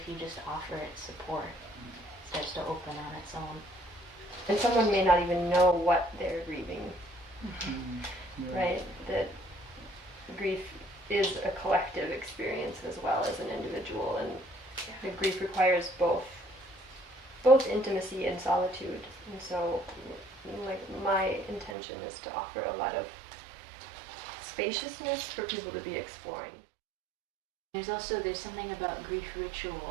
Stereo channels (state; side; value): drops out; left; at 21.8 s